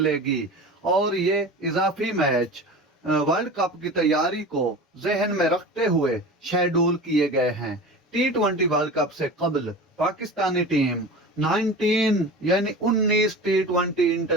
और ये इजाफी मैच वर्ल्ड कप की तैयारी को जहन में रखते हुए शेड्यूल किए गए हैं। T20 वर्ल्ड कप से कबल Pakistani team 19 T20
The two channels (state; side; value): normal; both; correlation 0.33